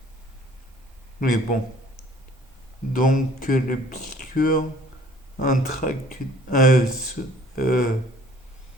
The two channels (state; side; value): normal; both; correlation 0.54